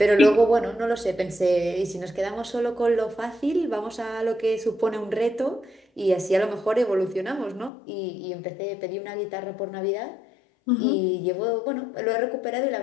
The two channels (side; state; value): right; drops out; at 7.7 s